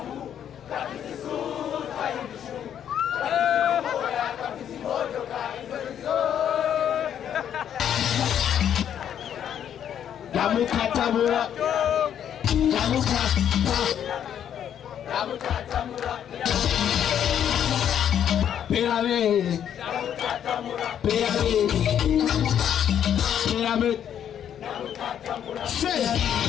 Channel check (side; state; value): right; quieter; 9.5 dB